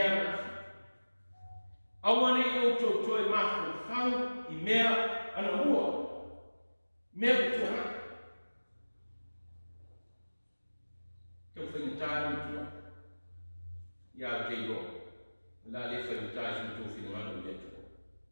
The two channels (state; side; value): inverted; both; correlation -1.00